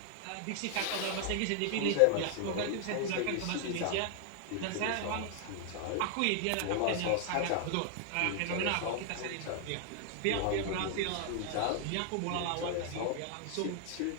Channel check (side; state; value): both; different; correlation 0.00